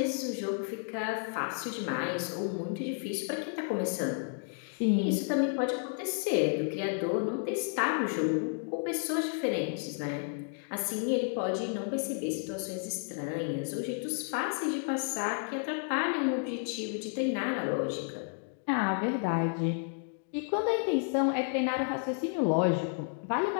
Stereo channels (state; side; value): silent; right; 57 dB below the other